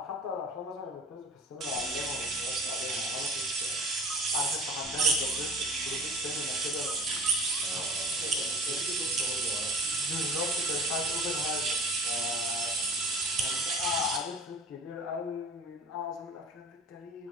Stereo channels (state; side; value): normal; both; correlation 0.42